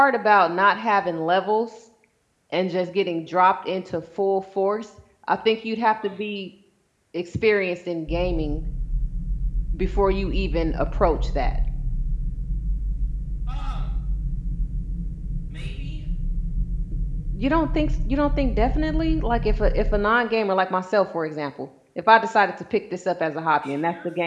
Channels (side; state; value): both; identical; correlation 1.00